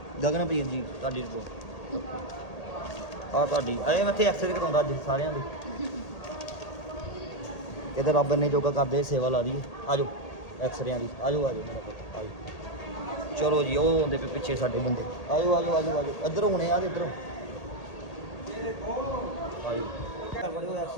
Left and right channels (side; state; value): right; late; 1.8 ms